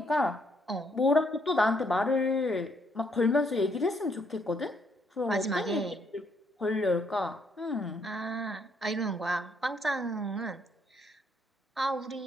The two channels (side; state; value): both; normal; correlation 0.71